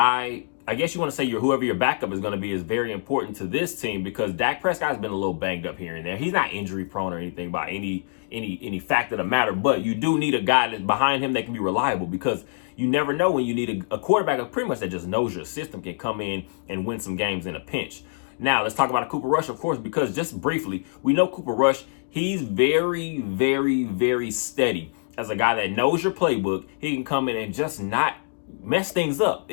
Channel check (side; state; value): right; silent; digital silence